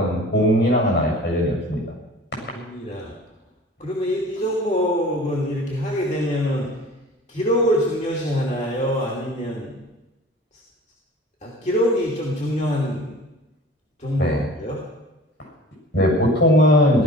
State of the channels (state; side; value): normal; both; correlation 0.44